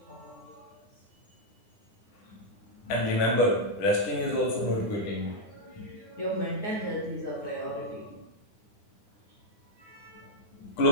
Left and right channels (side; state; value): right; late; 9.7 ms